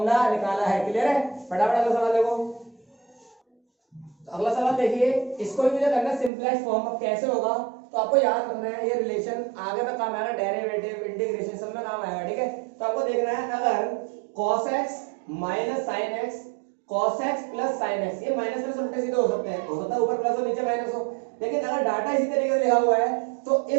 निकाला है। क्लियर है, फटाफट अगला सवाल देखो। तो अगला सवाल देखिए, इसको भी मुझे करना सिंपलेस्ट फॉर्म। अब कैसे होगा, तो आपको याद रखना है, ये रिलेशन आगे में काम आएगा, डेरिवेटिव, इंटीग्रेशन सब में काम आएगा। ठीक है, तो आपको देखना है, अगर cos x minus sin x, cos x plus sin x, ये माइनस प्लस उल्टे सीधे हो सकते हैं, हो सकता है ऊपर प्लस हो नीचे माइनस हो, लेकिन अगर डाटा इसी तरीके से लिखा हुआ है तो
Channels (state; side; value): drops out; left; at 6.3 s